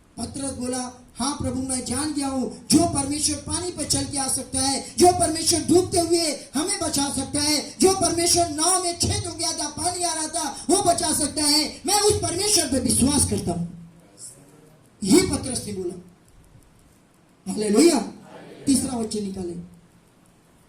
पतरस बोला हाँ प्रभु मैं जान गया हूँ, जो परमेश्वर पानी पर चल के आ सकता है, जो परमेश्वर डूबते हुए हमें बचा सकता है, जो परमेश्वर नाव में छेद हो गया था, पानी आ रहा था, वो बचा सकता है, मैं उस परमेश्वर पर विश्वास करता हूँ। ये पतरस ने बोला। हालेलुया। तीसरा वचन निकाले,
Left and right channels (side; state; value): both; identical; correlation 1.00